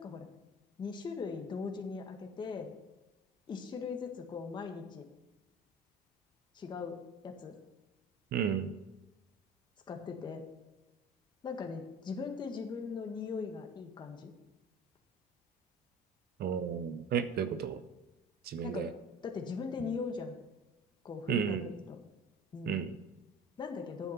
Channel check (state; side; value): normal; both; correlation 0.41